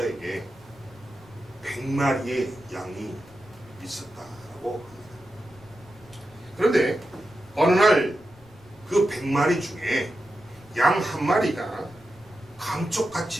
100마리의 양이 있었다라고 합니다. 그런데 어느 날 그 100마리 중에 양 한 마리가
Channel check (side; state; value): left; noise; rumble, 25 dB below the sound